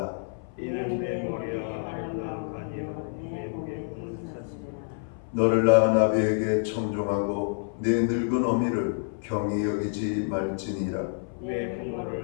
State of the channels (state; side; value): silent; right; 55 dB below the other